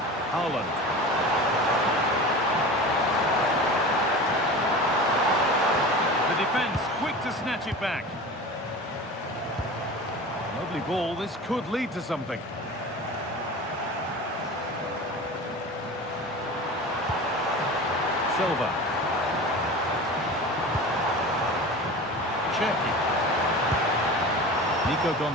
Haaland. The defence quick to snatch it back. Lovely ball. This could lead to something. Silva. Cherki. Nico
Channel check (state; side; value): normal; both; correlation 0.33